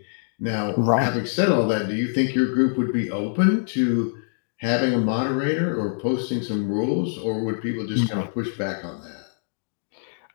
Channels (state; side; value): silent; right; digital silence